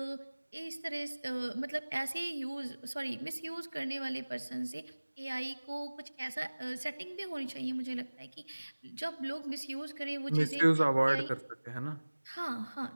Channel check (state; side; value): inverted; both; correlation -1.00